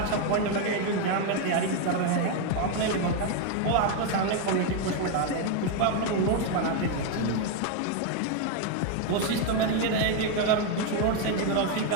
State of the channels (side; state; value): both; different; correlation 0.01